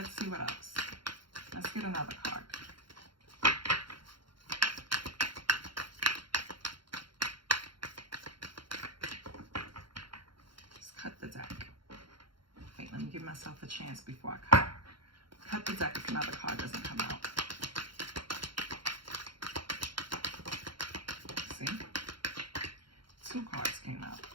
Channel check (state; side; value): late; left; 0.73 ms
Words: see what else. Let's get another card. Let's cut the deck. Wait, let me give myself a chance before I cut. Cut the deck if another card doesn't come out. See? 2 cards came out.